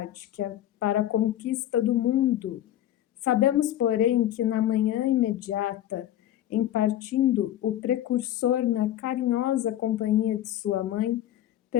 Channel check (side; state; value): right; quieter; 12.5 dB